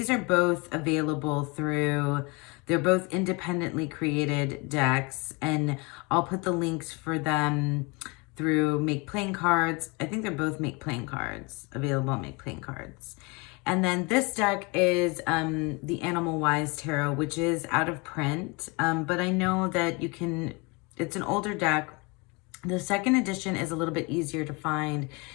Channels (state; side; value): quieter; right; 28.6 dB